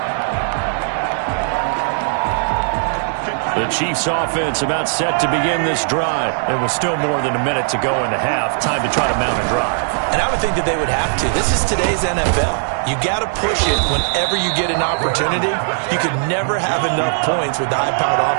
The Chiefs offense about set to begin this drive. There was still more than a minute to go in the half. Time to try to mount a drive. And I would think that they would have to. This is today's NFL. You got to push it whenever you get an opportunity. You could never have enough points with the high-powered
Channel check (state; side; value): silent; left; digital silence